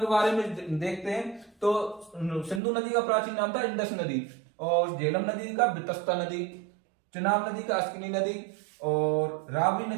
बारे में देखते हैं। तो सिंधु नदी का प्राचीन नाम था इंडस नदी, और झेलम नदी का बेतस्ता नदी, चिनाब नदी का अस्किनी नदी, और रावी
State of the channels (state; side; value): drops out; left; at 2.6 s